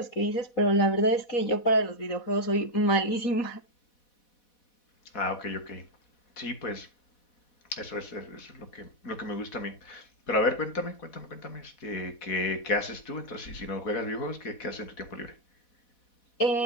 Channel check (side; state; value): right; late; 4.1 ms